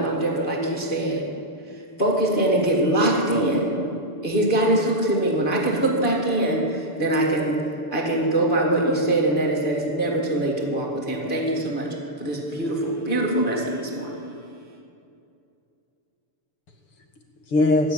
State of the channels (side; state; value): right; late; 6.9 ms